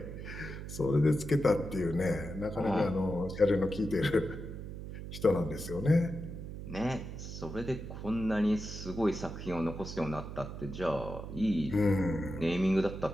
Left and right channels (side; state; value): right; noise; hum, 9 dB below the sound